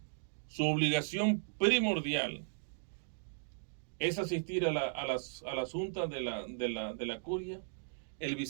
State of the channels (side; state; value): left; silent; digital silence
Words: su obligación primordial, es asistir a las juntas de la curia, el